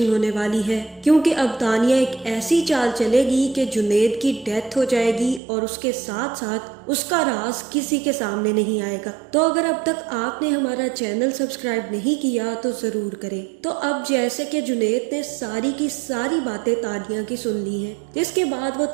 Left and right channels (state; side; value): drops out; left; at 5.4 s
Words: होने वाली है, क्योंकि अब तानिया एक ऐसी चाल चलेगी कि जुनेद की डेथ हो जाएगी और उसके साथ साथ उसका राज किसी के सामने नहीं आएगा। तो अगर अब तक आपने हमारा चैनल सब्सक्राइब नहीं किया तो जरूर करें। तो अब जैसे कि जुनेद ने सारी की सारी बातें तानिया की सुन ली हैं, जिसके बाद वो